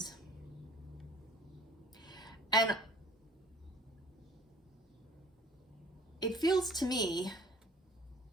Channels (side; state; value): both; normal; correlation 0.51